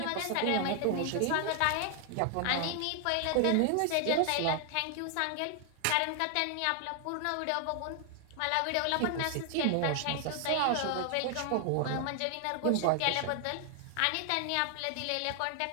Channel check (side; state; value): both; different; correlation 0.00